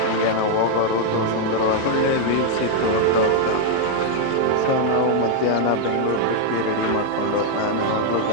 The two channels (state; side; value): different; both; correlation 0.00